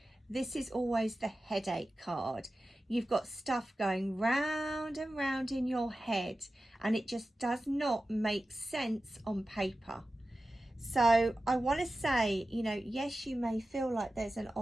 this is always the headache card. You've got stuff going round and round in your head and it just does not make sense on paper. So I want to say, you know, yes, you may feel like there's an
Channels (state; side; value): normal; both; correlation 0.94